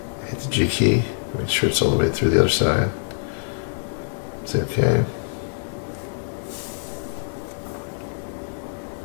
Hit the G key. Make sure it's all the way through the other side. Say okay.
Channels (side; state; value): right; silent; 62 dB below the other